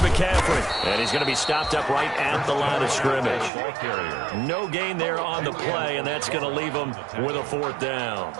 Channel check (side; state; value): left; drops out; at 3.5 s